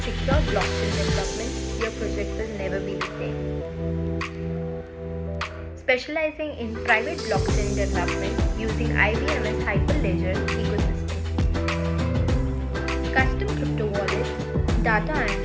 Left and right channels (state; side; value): identical; both; correlation 1.00